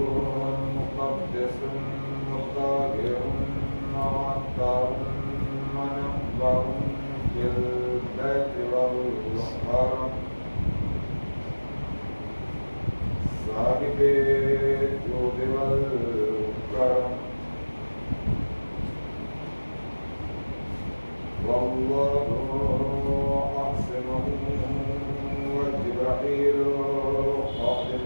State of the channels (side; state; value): both; inverted; correlation -1.00